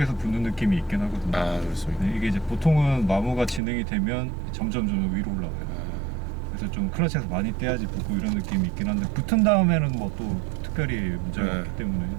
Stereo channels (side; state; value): left; drops out; at 3.6 s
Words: 붙는 느낌이 있긴 하거든요. 아 그렇습니다. 네, 이게 이제 보통은 마모가 진행이 되면 점점 위로 올라가요. 그래서 좀 클러치에서 많이 떼야지 붙고 이런 느낌이 있긴 한데 붙은 다음에는 뭐 또 특별히 문제가 네. 없기 때문에